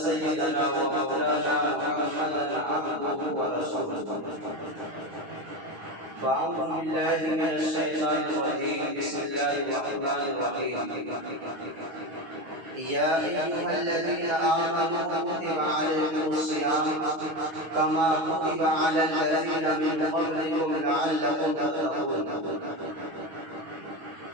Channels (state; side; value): late; left; 9.5 ms